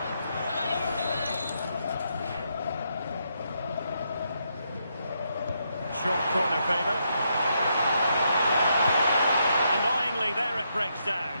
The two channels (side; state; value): both; inverted; correlation -0.79